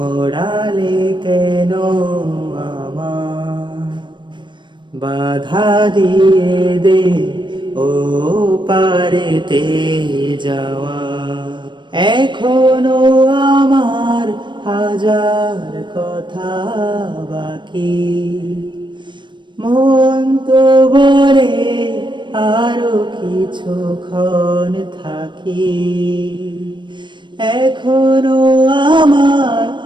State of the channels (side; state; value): left; late; 0.22 ms